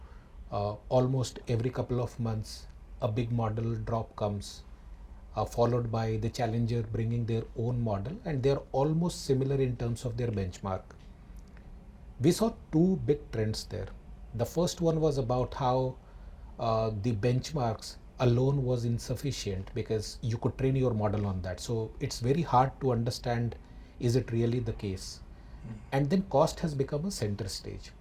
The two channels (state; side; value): identical; both; correlation 1.00